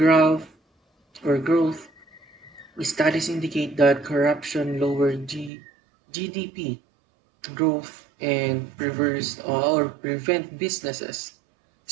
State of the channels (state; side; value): drops out; left; at 5.5 s